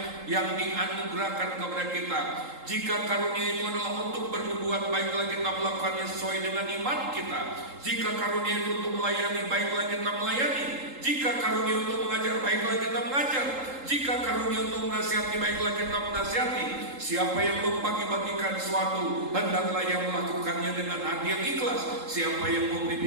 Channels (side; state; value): left; late; 3.8 ms